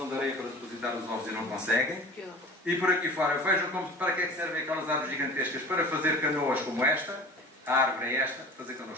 de areia para depositar os ovos e não conseguem. E por aqui fora, vejam para que é que servem aquelas árvores gigantescas, para fazer canoas como esta, a árvore é esta, fazer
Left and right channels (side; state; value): both; normal; correlation 0.40